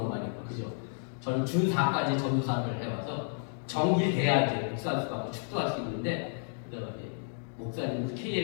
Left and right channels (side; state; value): right; silent; 57 dB below the other